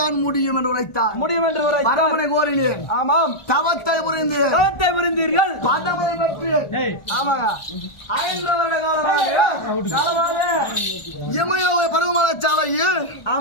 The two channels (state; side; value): late; right; 1.4 ms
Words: தான் முடியும் என்று உரைத்தார். பரமனை கோரினேன். ஆமாம் தவத்தை புரிந்தீர்கள். பதவை பெற்று ஆமாங்க 5 வருட காலமாக இமயவை பருவமலை சாலையில்